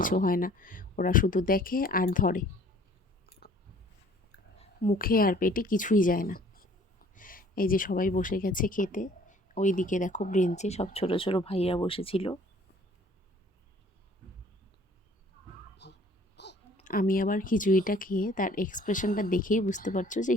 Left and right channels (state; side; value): normal; both; correlation 0.55